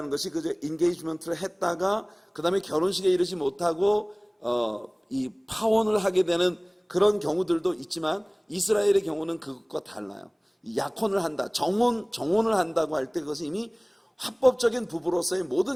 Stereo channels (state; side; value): identical; both; correlation 1.00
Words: 것이 그저 인게이지먼트를 했다가 그 다음에 결혼식에 이르지 못하고 이 파혼을 하게 되는 그런 경우들도 있지만, 이스라엘의 경우는 그것과 달라요. 약혼을 한다, 정혼을 한다고 할 때 그것은 이미 합법적인 부부로서의